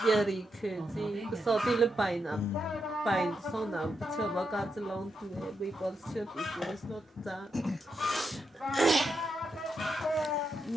bia rike gì cái số tiền là bài số nào chưa bao giờ chỉ long thì bị bỏ chưa bị quên nó ta.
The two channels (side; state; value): both; normal; correlation 0.84